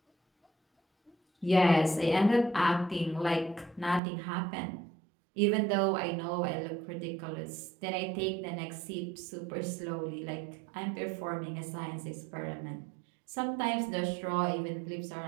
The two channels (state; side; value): drops out; left; at 4.0 s